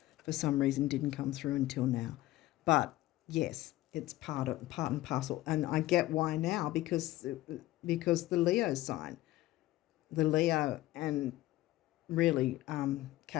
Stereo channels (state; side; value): quieter; right; 16.7 dB